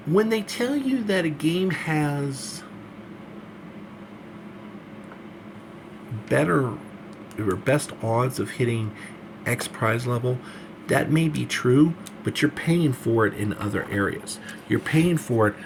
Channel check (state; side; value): identical; both; correlation 1.00